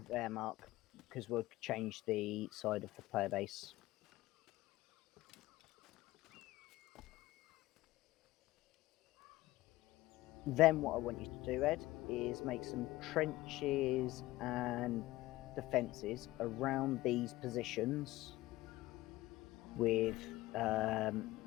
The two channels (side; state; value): right; quieter; 17.7 dB